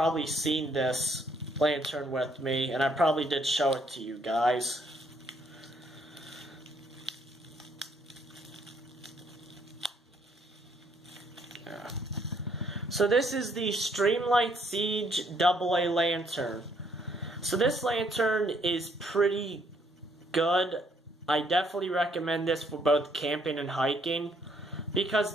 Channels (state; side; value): normal; both; correlation 0.68